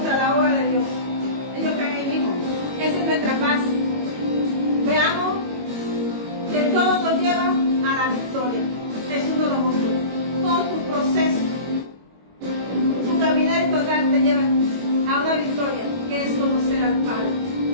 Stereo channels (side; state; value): left; late; 22 ms